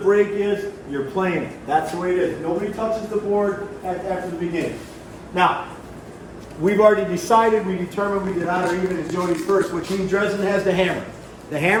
is, you're playing it. That's the way it is. Nobody touches the board after the beginning. Now, we've already decided, we determined we did odd or even as Jody's first, which means Dresden has the hammer. The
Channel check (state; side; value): identical; both; correlation 1.00